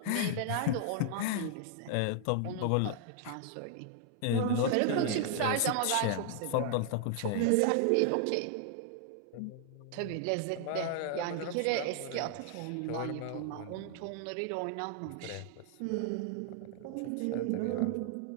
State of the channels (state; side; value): different; both; correlation 0.00